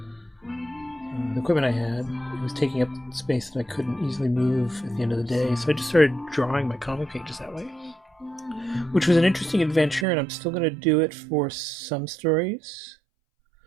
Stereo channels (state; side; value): drops out; left; at 10.1 s